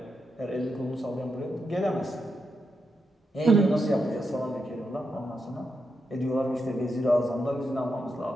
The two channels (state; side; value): normal; both; correlation 0.85